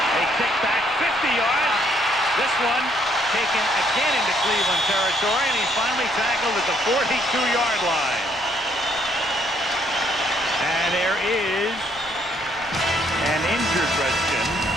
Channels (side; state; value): both; normal; correlation 0.67